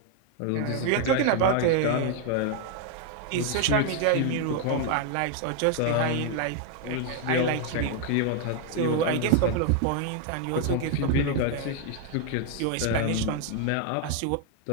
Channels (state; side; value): different; both; correlation 0.00